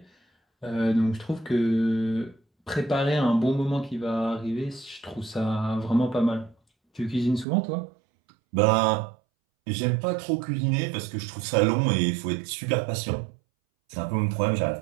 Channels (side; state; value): left; drops out; at 7.5 s